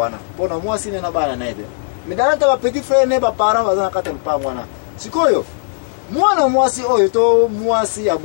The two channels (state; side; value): silent; right; 56 dB below the other